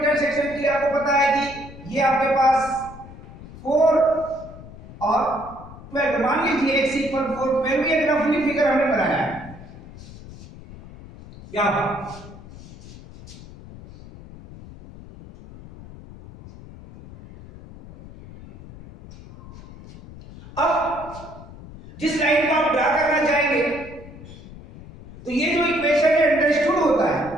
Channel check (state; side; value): noise; left; rumble, 17 dB below the sound